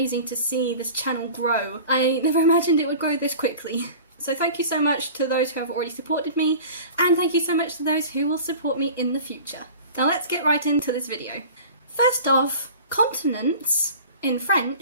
to see this channel grow. I never imagined it would grow this quickly. So thank you so much to those who have already supported me, and thank you so much to those who will support me in the future. Now let's get right into this video. First off, continents in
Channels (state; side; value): inverted; both; correlation -0.40